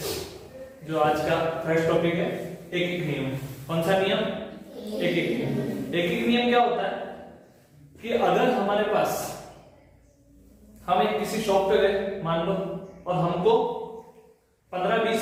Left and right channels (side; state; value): both; identical; correlation 1.00